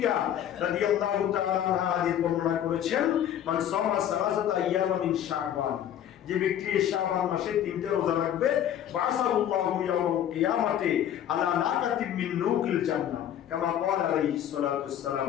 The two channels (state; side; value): quieter; right; 10.5 dB